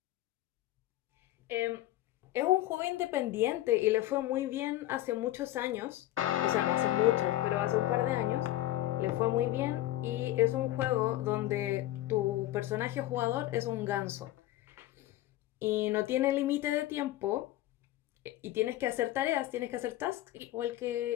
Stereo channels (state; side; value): quieter; right; 15.1 dB